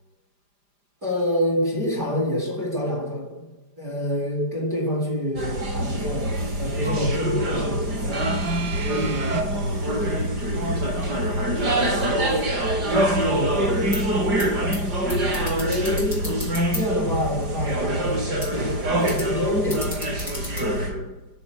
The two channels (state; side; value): late; left; 5.0 ms